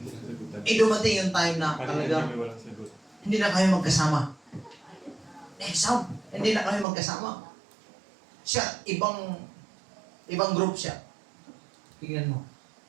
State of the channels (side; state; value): left; drops out; at 6.9 s